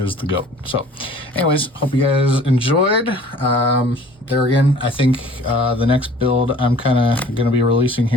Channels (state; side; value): normal; both; correlation 0.50